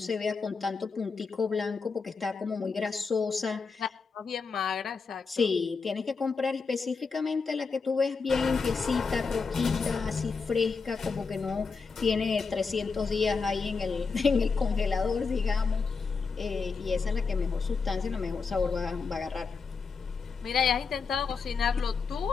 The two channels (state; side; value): quieter; right; 4.9 dB